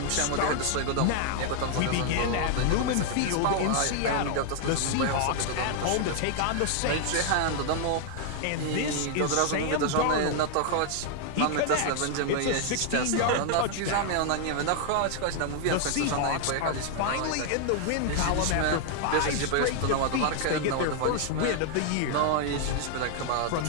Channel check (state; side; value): different; both; correlation 0.00